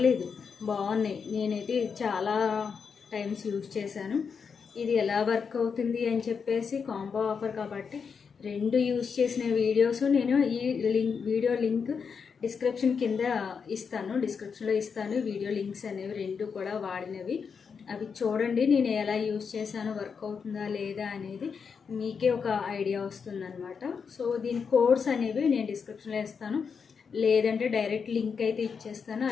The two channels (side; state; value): right; quieter; 6.0 dB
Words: బాగున్నాయి. నేనైతే చాలా టైమ్స్ యూజ్ చేశాను. ఇది ఎలా వర్క్ అవుతుంది అని చెప్పేసి కాంబో ఆఫర్ కాబట్టి 2 యూజ్ చేసిన వీడియోస్ నేను ఈ వీడియో లింక్ డిస్క్రిప్షన్లో ఇస్తాను. వీడియో లింక్స్ అనేవి 2 కూడా వాడినవి, అవి చూడండి. నేను ఎలా యూజ్ చేశాను, వర్క్ అవుతుందా లేదా అనేది మీకే ఒక ఐడియా వస్తుందన్నమాట. సో దీని కోడ్స్ అనేవి నేను డిస్క్రిప్షన్లో ఇస్తాను, లేదంటే డైరెక్ట్ లింక్ అయితే ఇచ్చేస్తాను.